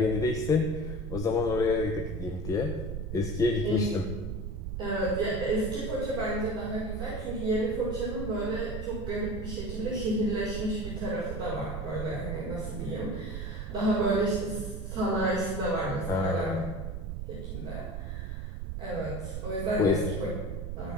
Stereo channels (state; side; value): noise; right; rumble, 5 dB below the sound